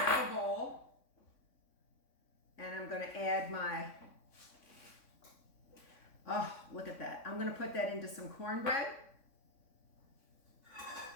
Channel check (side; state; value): right; late; 3.6 ms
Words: a bowl and I'm going to add oh, look at that. I'm going to put that into some cornbread